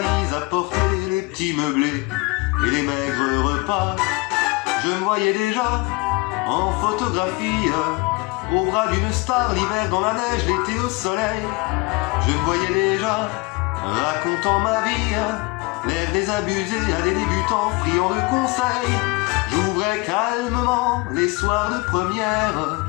à porter, les petits meublés et les maigres repas. Je me voyais déjà en photographie, au bras d'une star, l'hiver dans la neige, l'été au soleil. Je me voyais déjà racontant ma vie, l'air désabusé à des débutants friands de conseils. J'ouvrais calmement les soirs de première,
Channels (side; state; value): right; quieter; 24.9 dB